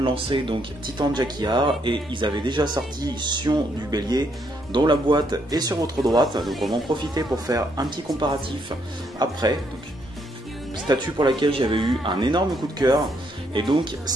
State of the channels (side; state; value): both; normal; correlation 0.73